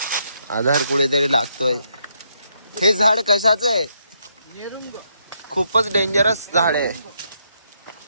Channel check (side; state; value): both; inverted; correlation -0.77